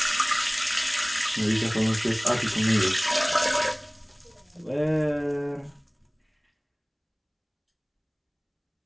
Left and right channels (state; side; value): identical; both; correlation 1.00